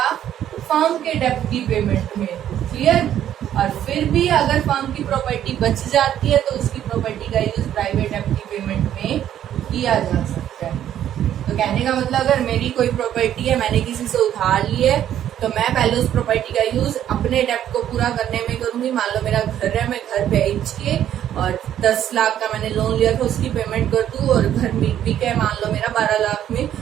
फर्म के डेप्ट की पेमेंट में, क्लियर। और फिर भी अगर फर्म की प्रॉपर्टी बच जाती है तो उसकी प्रॉपर्टी का यूज प्राइवेट डेप्ट की पेमेंट में किया जा सकता है। तो कहने का मतलब अगर मेरी कोई प्रॉपर्टी है, मैंने किसी से उधार ली है, तो मैं पहले उस प्रॉपर्टी का यूज अपने डेप्ट को पूरा करने में करूंगी। मान लो मेरा घर है, मैं घर बेच के और 10 लाख का मैंने लोन लिया था उसकी पेमेंट कर दूं, और घर बिक है मान लो मेरा 12 लाख में,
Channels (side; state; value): left; quieter; 10.9 dB